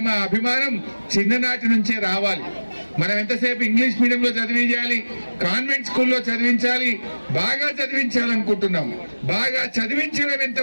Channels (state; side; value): inverted; both; correlation -1.00